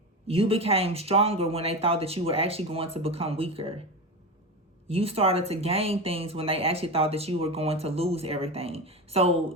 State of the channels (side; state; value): both; normal; correlation 0.22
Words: You became stronger when they thought that you were actually going to become weaker. You started to gain things when they actually thought that you were going to lose everything.